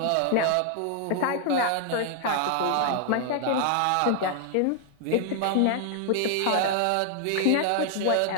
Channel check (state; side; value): different; both; correlation 0.00